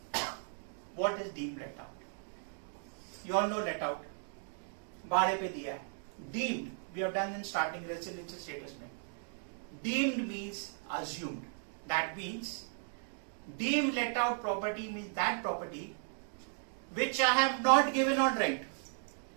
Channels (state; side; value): silent; left; 54 dB below the other